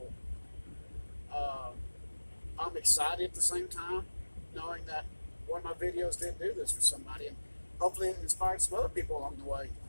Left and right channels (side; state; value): both; inverted; correlation -1.00